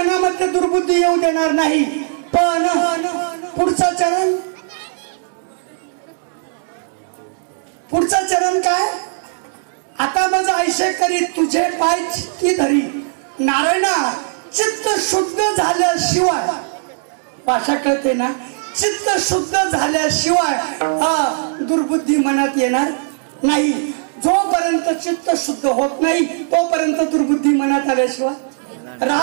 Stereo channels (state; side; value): silent; left; digital silence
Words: दुर्बुद्धी येऊ देणार नाही, पण पुढचा चरण काय. आता माझं आयुष्य करी तुझे पाय चित्ती धरी. नारायणा चित्त शुद्ध झाल्याशिवाय, भाषा कळते ना, चित्त शुद्ध झाल्याशिवाय दुर्बुद्धी मनात येणार नाही. जोपर्यंत चित्त शुद्ध होत नाही तोपर्यंत दुर्बुद्धी मनात आल्याशिवाय